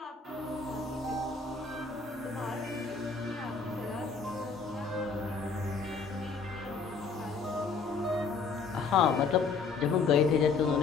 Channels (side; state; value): right; quieter; 4.9 dB